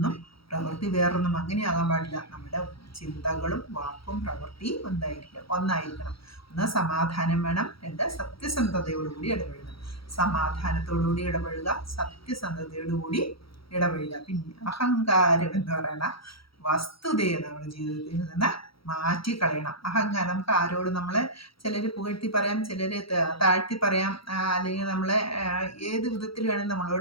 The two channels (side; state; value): right; late; 0.75 ms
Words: പ്രവൃത്തി വേറൊന്നും അങ്ങനെയാകാൻ പാടില്ല. നമ്മുടെ ചിന്തകളും വാക്കും പ്രവൃത്തിയും ഒന്നായിരിക്കണം. ഒന്ന് സമാധാനം വേണം, രണ്ട് സത്യസന്ധതയോടുകൂടി ഇടപഴകണം. സമാധാനത്തോടുകൂടി ഇടപഴകുക, സത്യസന്ധതയോടുകൂടി ഇടപഴകുക. പിന്നെ അഹങ്കാരം എന്ന് പറയുന്ന വസ്തുതയെ നമ്മുടെ ജീവിതത്തിൽ നിന്ന് മാറ്റിക്കളയണം. അഹങ്കാരം നമുക്ക് ആരോടും നമ്മളെ ചിലർ പുകഴ്ത്തി പറയാം, ചിലർ താഴ്ത്തി പറയാം, അല്ലെങ്കിൽ നമ്മളെ ഏത് വിധത്തിൽ വേണമെങ്കിൽ